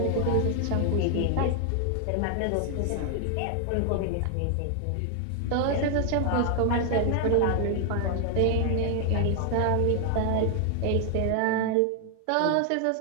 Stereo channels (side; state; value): both; different; correlation 0.00